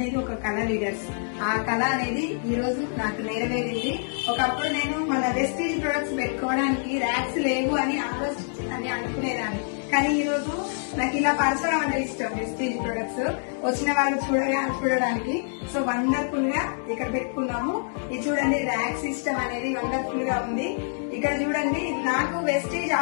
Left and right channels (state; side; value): silent; right; digital silence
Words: ఒక కళ లీడర్స్. ఆ కళ అనేది ఈ రోజు నాకు నెరవేరింది. ఒకప్పుడు నేను మన వెస్టీజ్ ప్రొడక్ట్స్ పెట్టుకోవడానికి ర్యాక్స్ లేవు అని అనుకునేదాన్ని. కానీ ఈ రోజు నాకు ఇలా పరచడం అంటే ఇష్టం. వెస్టీజ్ ప్రొడక్ట్స్ వచ్చిన వాళ్ళు చూడడానికి సో వండర్ఫుల్ గా ఇక్కడ పెట్టుకున్నాము. ఇది చూడండి, ర్యాక్ సిస్టమ్ అనేది వండర్ఫుల్ గా ఉంది. ఇక్కడ చూడండి, నాకు వెస్టీజ్